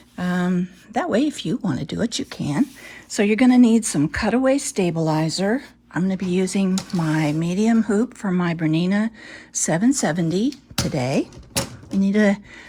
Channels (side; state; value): both; identical; correlation 1.00